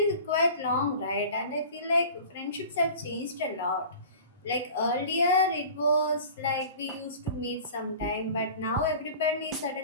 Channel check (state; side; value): inverted; both; correlation -0.40